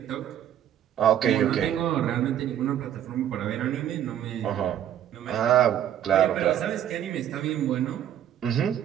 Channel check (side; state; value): left; quieter; 10.7 dB